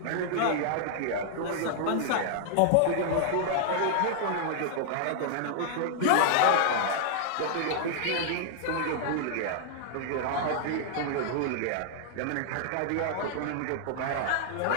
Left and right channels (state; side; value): different; both; correlation -0.01